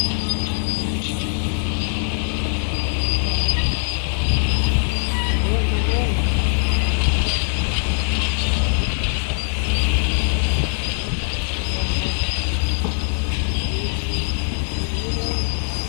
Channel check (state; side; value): silent; right; digital silence